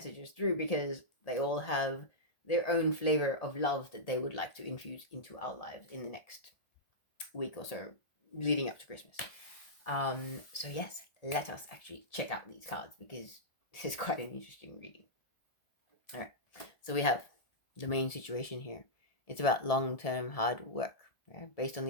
through, because they all have their own flavor of love that they would like to infuse into our lives in the next week or so leading up to Christmas. So yes, let us actually check out these cards, because this is quite an interesting reading. All right, so we have the main situation here. It's about long-term hard work, right? Based on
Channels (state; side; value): late; right; 1.4 ms